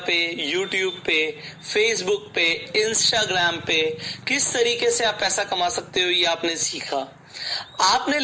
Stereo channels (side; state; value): both; identical; correlation 1.00